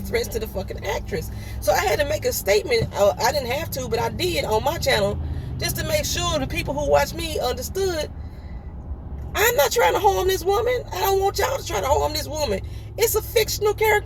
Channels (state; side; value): identical; both; correlation 1.00